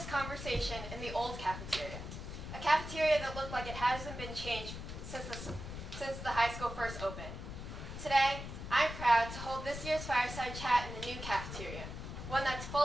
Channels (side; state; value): left; noise; rumble, 8 dB below the sound